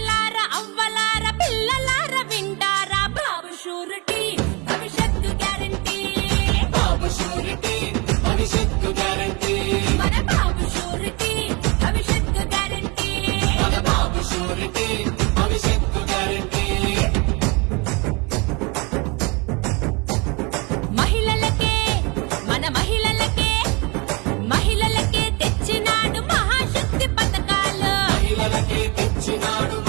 అవ్వలార పిల్లలార వింటారా బాబు షూరిటీ భవిష్యత్తు గ్యారంటీ బాబు షూరిటీ భవిష్యత్తు గ్యారంటీ మన బాబు షూరిటీ భవిష్యత్తు గ్యారంటీ మన బాబు షూరిటీ భవిష్యత్తు గ్యారంటీ మహిళలకే మన మహిళలకే తెచ్చినాడు మహాశక్తి పథకాలు మహిళలకే తెచ్చినాడు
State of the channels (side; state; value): left; quieter; 28.7 dB